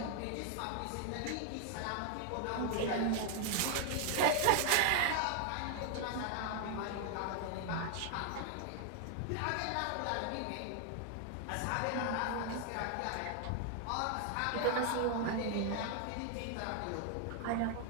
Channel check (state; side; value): different; both; correlation 0.00